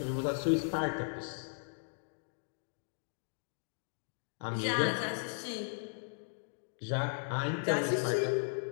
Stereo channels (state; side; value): silent; right; digital silence